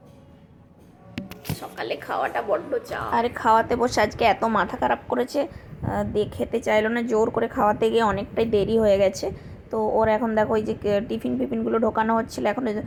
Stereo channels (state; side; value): identical; both; correlation 1.00